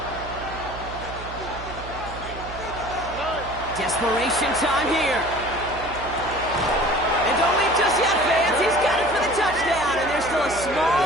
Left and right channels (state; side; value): noise; right; hum, 12 dB below the sound